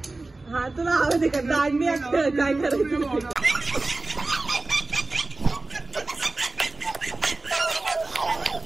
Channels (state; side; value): quieter; left; 3.2 dB